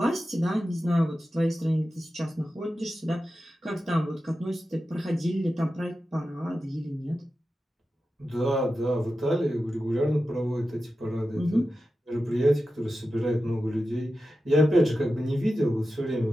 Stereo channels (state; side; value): normal; both; correlation 0.92